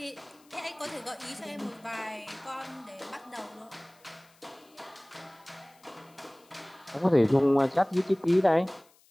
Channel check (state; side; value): noise; left; hiss, 30 dB below the sound